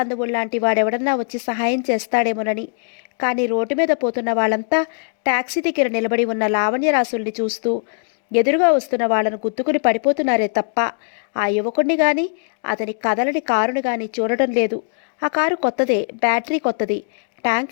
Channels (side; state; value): right; silent; digital silence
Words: వాడెవడన్నా వచ్చి సహాయం చేస్తాడేమోనని. కానీ రోడ్డు మీద పోతున్న వాళ్ళంతా టాక్సీ దగ్గర నిలబడి ఉన్న లావణ్యరాసుల్ని చూస్తూ ఎదురుగా వస్తున్న వాళ్లను గుద్దుకుని పడిపోతున్నారే తప్ప ఆ యువకుడిని గాని అతని కదలని కారుని గాని చూడటం లేదు. ఆ కారు కొత్తదే, బ్యాటరీ కొత్తది. ట్యాంక్